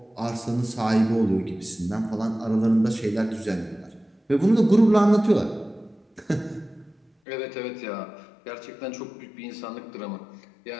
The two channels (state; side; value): drops out; right; at 7.1 s